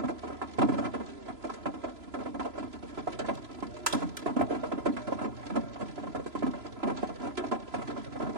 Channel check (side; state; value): left; late; 3.0 ms